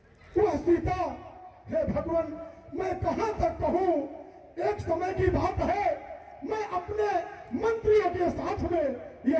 वह सीता। हे भगवान, मैं कहां तक कहूं। एक समय की बात है, मैं अपने मंत्रियों के साथ में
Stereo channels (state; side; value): identical; both; correlation 1.00